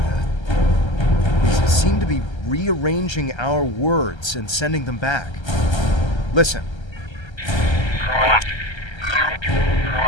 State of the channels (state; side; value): late; right; 1.3 ms